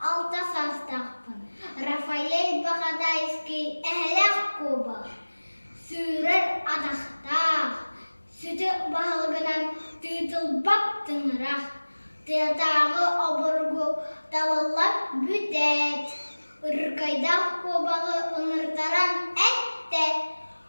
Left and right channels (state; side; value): inverted; both; correlation -1.00